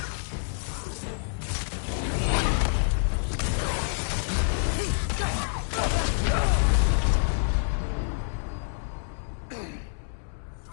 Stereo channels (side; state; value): right; silent; digital silence